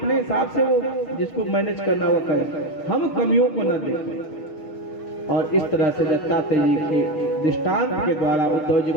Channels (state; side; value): late; right; 6.5 ms